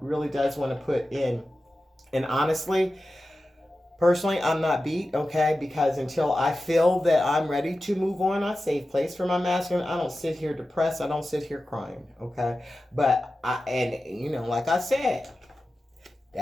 really does want to put in. And honestly, personally, I'm not beat, okay? Because until I feel that I'm ready to move on, I save place for my masculine. I don't sit here depressed. I don't sit here crying, okay? But like I said,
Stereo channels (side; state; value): both; normal; correlation 0.94